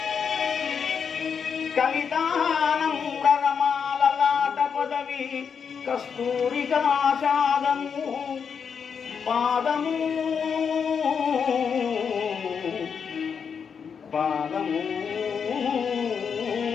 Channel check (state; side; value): quieter; right; 6.6 dB